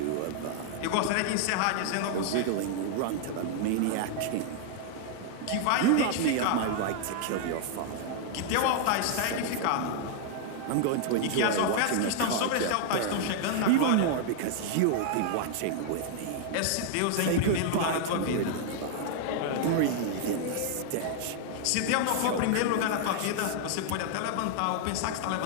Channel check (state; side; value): different; both; correlation 0.00